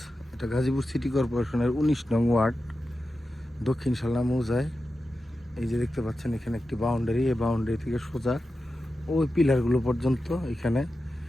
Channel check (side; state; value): both; normal; correlation 0.91